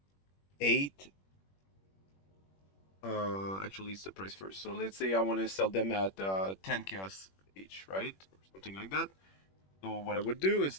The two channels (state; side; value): late; right; 21 ms